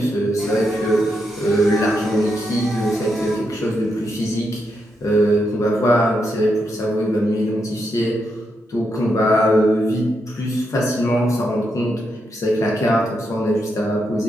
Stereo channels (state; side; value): normal; both; correlation 0.82